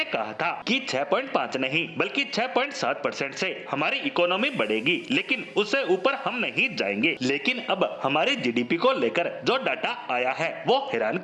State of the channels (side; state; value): both; identical; correlation 1.00